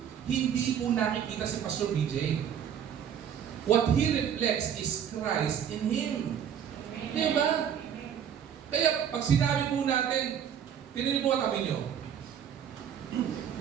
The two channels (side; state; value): left; quieter; 8.7 dB